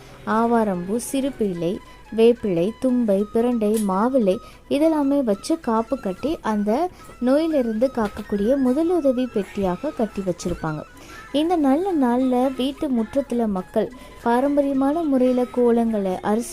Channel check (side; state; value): both; identical; correlation 1.00